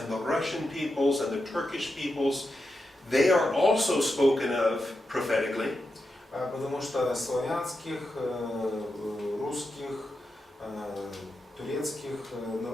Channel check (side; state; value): both; normal; correlation 0.88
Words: the Russian peoples and the Turkish peoples, they are also spoken of prophetically. Потому что славянских, русских, турецких